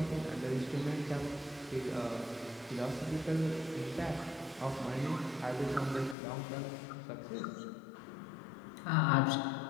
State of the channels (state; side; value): drops out; right; at 6.2 s